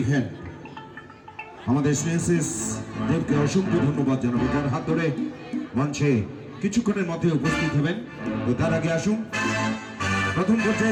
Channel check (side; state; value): both; identical; correlation 1.00